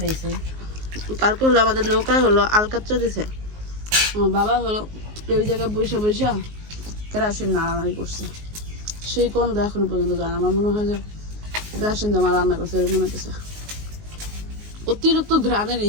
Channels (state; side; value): late; left; 19 ms